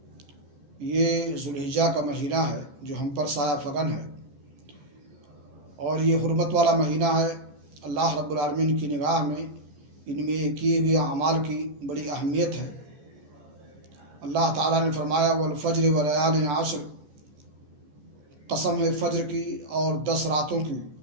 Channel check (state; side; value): late; left; 15 ms